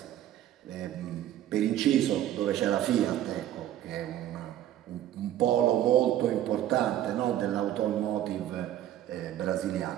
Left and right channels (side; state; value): left; quieter; 12.2 dB